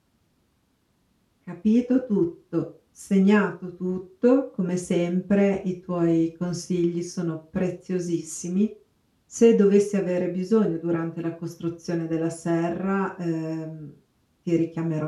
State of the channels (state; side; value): identical; both; correlation 1.00